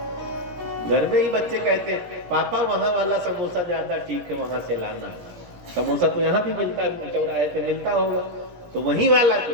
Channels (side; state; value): left; late; 17 ms